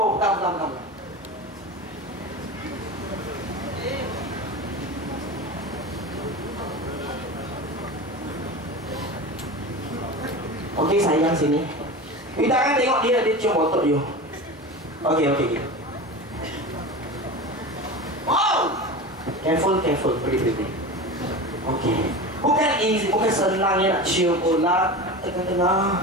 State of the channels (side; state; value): both; normal; correlation 0.28